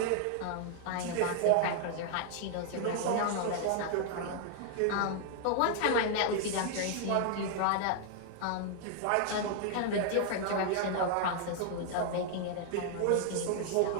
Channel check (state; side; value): different; both; correlation 0.00